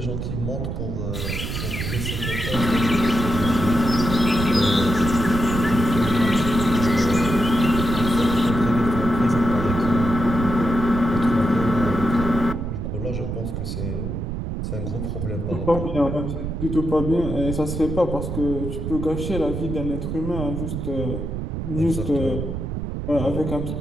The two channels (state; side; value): noise; right; rumble, 4 dB below the sound